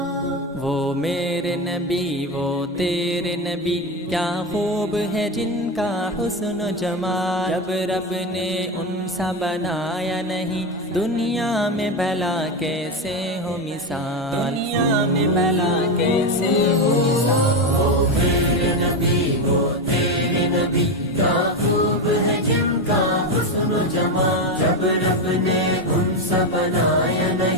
وہ میرے نبی وہ تیرے نبی کیا خوب ہے جن کا حسن و جمال جب رب نے ان سا بنایا نہیں دنیا میں بھلا کیسے ہو مثال دنیا میں بھلا کیسے ہو مثال وہ میرے نبی وہ تیرے نبی کیا خوب ہے جن کا حسن و جمال جب رب نے ان سا بنایا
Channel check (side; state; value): both; normal; correlation 0.14